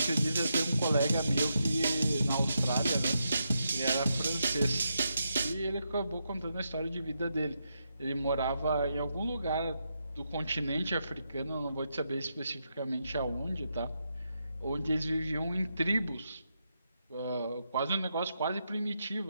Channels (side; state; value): both; inverted; correlation -0.83